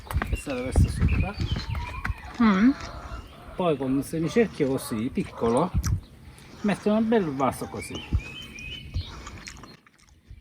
passare questo sopra, poi con un semicerchio così, piccolo, mettere un bel vaso così.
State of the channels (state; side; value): identical; both; correlation 1.00